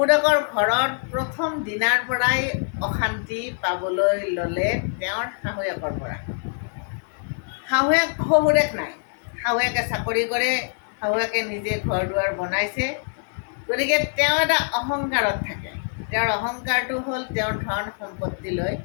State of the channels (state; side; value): silent; right; digital silence